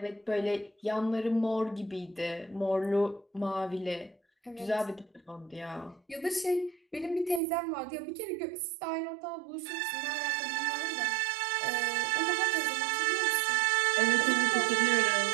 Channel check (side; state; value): left; drops out; at 7.4 s